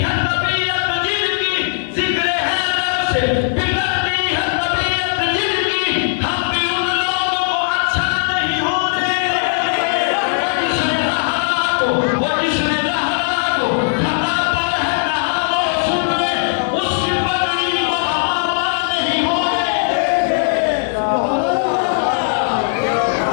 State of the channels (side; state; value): right; silent; digital silence